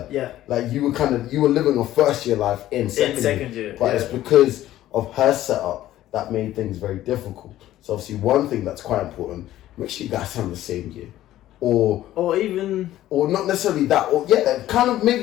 Like you were living a first year life in second year, but it's because of her setup that made things very difficult. So obviously, one thing that's quite important: make sure you guys have the same year. Or not necessarily that, or kind of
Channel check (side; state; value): right; quieter; 13.9 dB